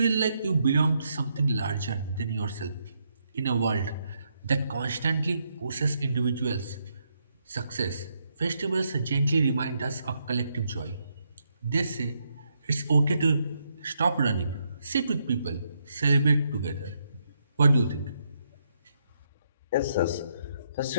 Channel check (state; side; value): inverted; both; correlation -0.78